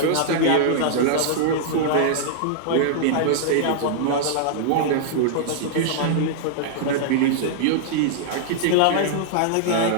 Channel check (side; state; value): both; different; correlation -0.01